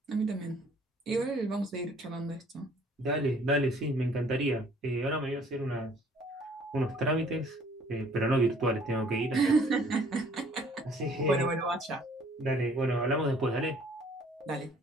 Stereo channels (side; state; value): both; normal; correlation 0.58